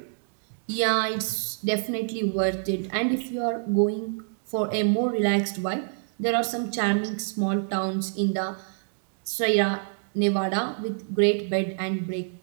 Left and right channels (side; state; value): left; silent; digital silence